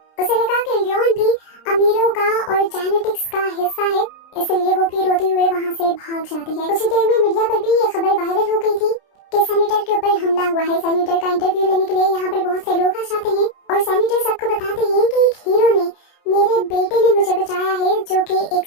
उसे लगा कि लियोन भी अमीरों का और जेनेटिक्स का हिस्सा है, इसलिए वो भी रोते हुए वहाँ से भाग जाती है। कुछ देर में मीडिया पर भी ये खबर वायरल हो गई थी कि सैनिटर के ऊपर हमला हुआ है। सैनिटर का इंटरव्यू लेने के लिए यहाँ पर बहुत से लोग आ जाते हैं, और सैनिटर सबको बताते हैं कि एक हीरो ने, मेरे बेटे ने मुझे बचाया है, जो कि एक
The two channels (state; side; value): late; right; 30 ms